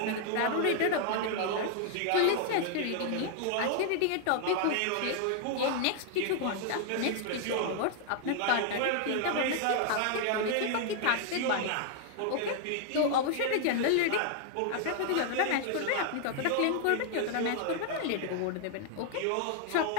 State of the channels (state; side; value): different; both; correlation 0.00